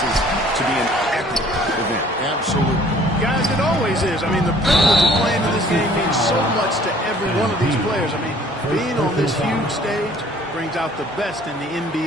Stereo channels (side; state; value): both; normal; correlation 0.55